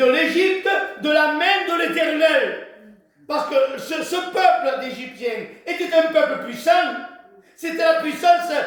l'Égypte de la main de l'Éternel. Parce que ce peuple d'Égyptiens était un peuple puissant. C'était la puissance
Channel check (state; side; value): identical; both; correlation 1.00